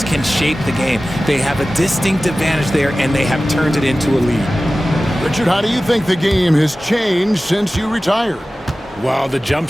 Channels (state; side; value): normal; both; correlation 0.96